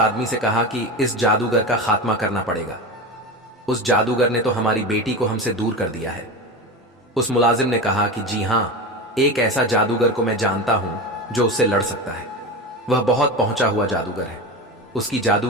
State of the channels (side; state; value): both; normal; correlation 0.24